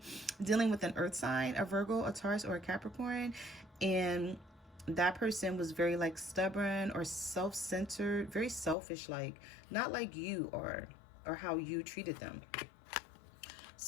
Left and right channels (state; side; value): drops out; right; at 8.8 s